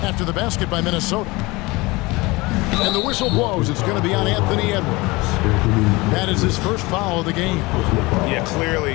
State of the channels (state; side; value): quieter; right; 23.0 dB